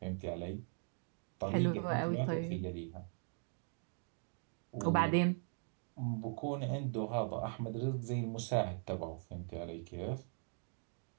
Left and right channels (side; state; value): left; silent; 51 dB below the other